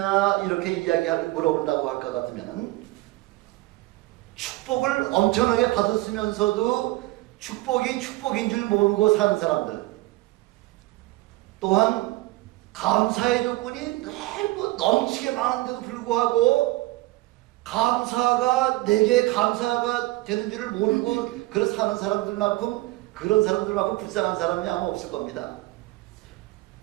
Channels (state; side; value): quieter; left; 19.6 dB